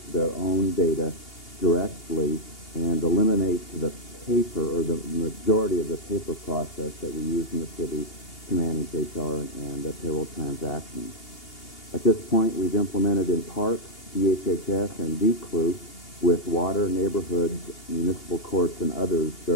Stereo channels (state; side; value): late; right; 2.8 ms